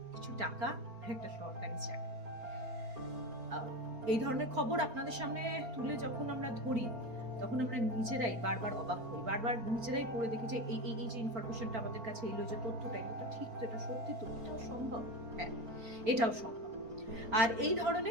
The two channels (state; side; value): late; left; 4.3 ms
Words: কিছু টাকা, একটা সরকারি চাকরি। এই ধরনের খবর আপনাদের সামনে তুলে যখন আমরা ধরি তখন আমরা নিজেরাই বারবার অবাক হই, বারবার নিজেরাই পড়ে দেখি যে এই যে ইনফরমেশনটা আমাদের কাছে এলো, যে তথ্যটা, এটা ঠিক তো, এটা সত্যি তো, এটাও সম্ভব। হ্যাঁ, এটাও সম্ভব। আর এই